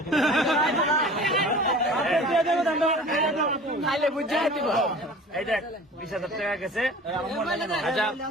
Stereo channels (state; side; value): normal; both; correlation 0.42